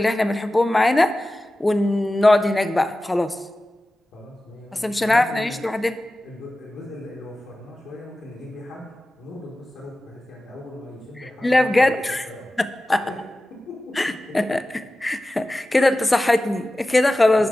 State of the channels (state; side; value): normal; both; correlation 0.95